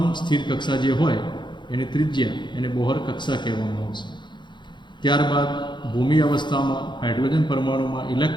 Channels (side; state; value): right; late; 0.22 ms